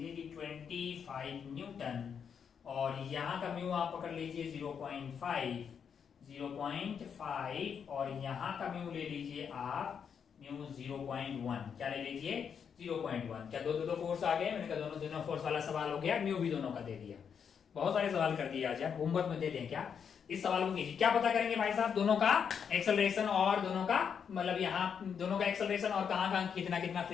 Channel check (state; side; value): quieter; right; 7.2 dB